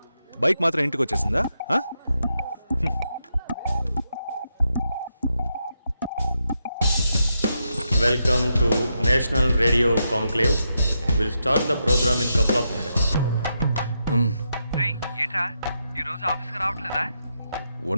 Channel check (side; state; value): both; inverted; correlation -0.83